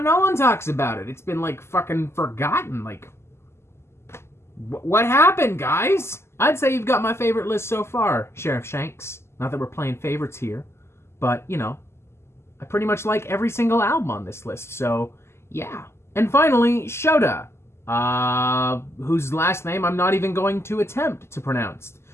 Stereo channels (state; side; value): late; right; 0.12 ms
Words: no one talks about it. It's been, like, fucking forgotten. Like, what happened, guys? I'd say you've got my favorite list so far, Sharath Shanks. Not that we're playing favorites here, but, you know, I pretty much like every single album on this list, so, yeah. And finally, Shota, whose last name I'm not even going to attempt to pronounce.